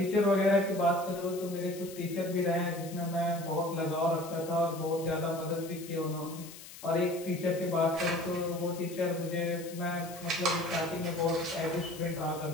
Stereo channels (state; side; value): noise; left; hiss, 16 dB below the sound